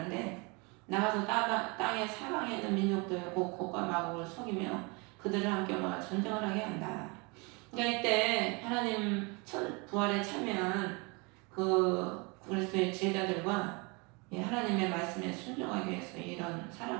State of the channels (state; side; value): quieter; left; 29.5 dB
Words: 나가서 땅의 사방에 있는 민족들 곡과 마곡을 속이며 그들을 함께 모아 전쟁을 하게 한다. 그러니까 이때 하나님 부활에 참여한 그 그리스도의 제자들과 하나님의 말씀에 순종하기 위해서 이런